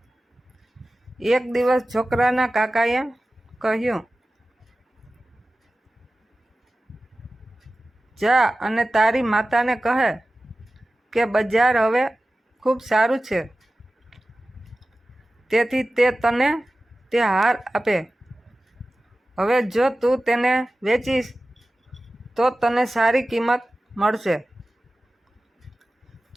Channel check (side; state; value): both; normal; correlation 0.96